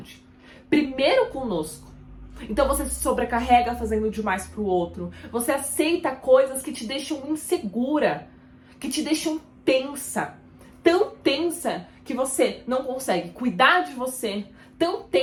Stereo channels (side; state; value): both; identical; correlation 1.00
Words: Primeiro conosco. Então você se sobrecarrega fazendo demais pro outro. Você aceita coisas que te deixam insegura, que te deixam tensa. Tão tensa que você não consegue cuidar de você. Tão